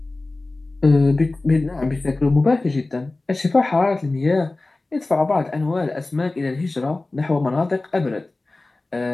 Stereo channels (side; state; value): right; quieter; 3.1 dB